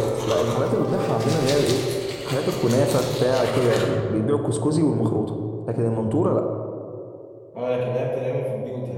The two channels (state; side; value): identical; both; correlation 1.00